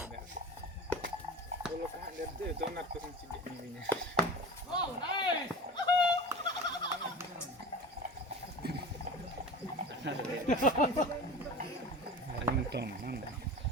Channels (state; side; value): normal; both; correlation 0.34